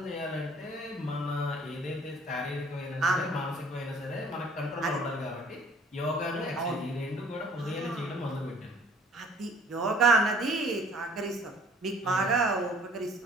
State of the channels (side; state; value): both; normal; correlation 0.55